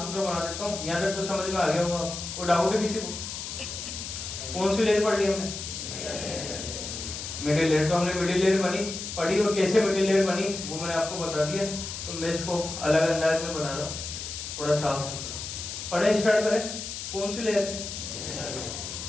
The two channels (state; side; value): noise; left; hiss, 7 dB below the sound